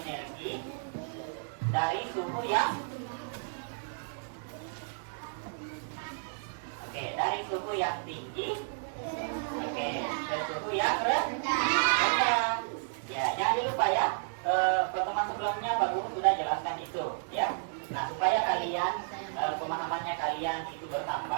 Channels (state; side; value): silent; left; digital silence